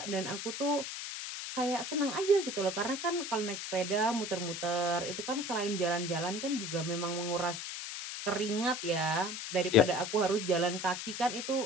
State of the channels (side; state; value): left; noise; hiss, 6 dB below the sound